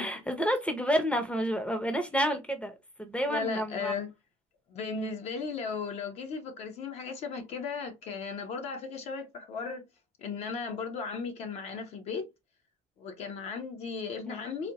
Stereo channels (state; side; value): normal; both; correlation 0.58